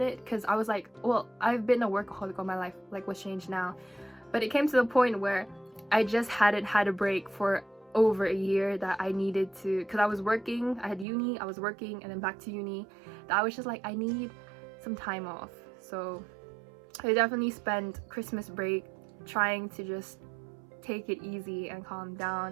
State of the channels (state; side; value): drops out; left; at 11.1 s